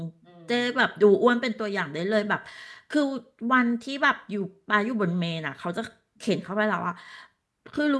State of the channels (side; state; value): both; identical; correlation 1.00